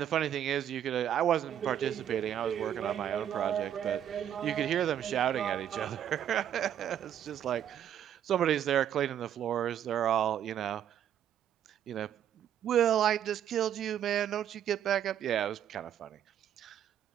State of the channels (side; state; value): left; quieter; 10.0 dB